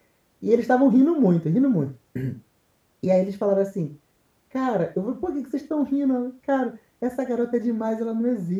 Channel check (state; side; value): identical; both; correlation 1.00